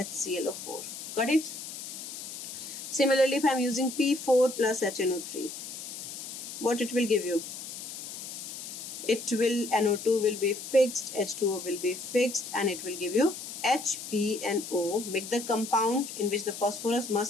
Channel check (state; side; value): noise; left; hiss, 9 dB below the sound